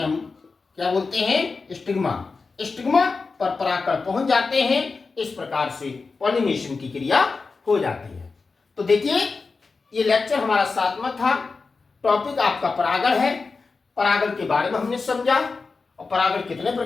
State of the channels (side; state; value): right; quieter; 4.3 dB